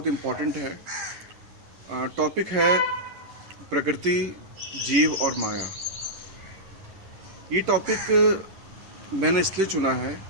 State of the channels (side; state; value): left; late; 10 ms